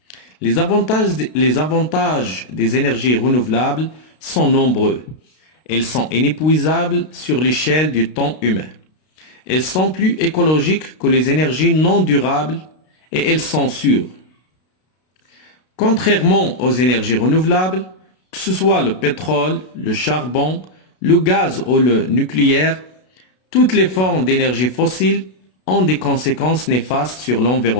Les avantages des énergies renouvelables sont nombreux. Elles sont inépuisables sur l'échelle du temps humain. Elles sont plus écologiques que les énergies non durables et elles sont sûres. Contrairement aux énergies renouvelables, que ce soit le pétrole, le charbon, le gaz ou le nucléaire, toutes les formes d'énergie fossile ont des conséquences néfastes sur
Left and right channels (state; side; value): late; right; 32 ms